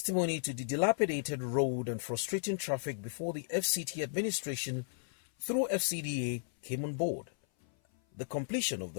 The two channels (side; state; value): right; silent; 55 dB below the other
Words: to the dilapidated road and frustrating traffic before the FCT administration through FCDA came on board. The completion of